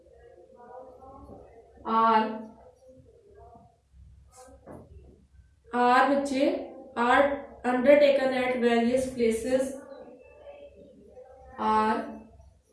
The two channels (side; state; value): both; identical; correlation 1.00